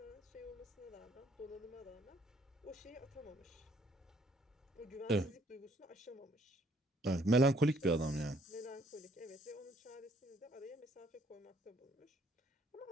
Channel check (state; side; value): normal; both; correlation 0.65